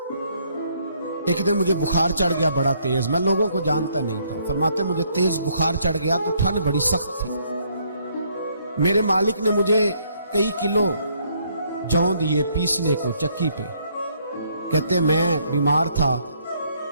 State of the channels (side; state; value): both; inverted; correlation -0.69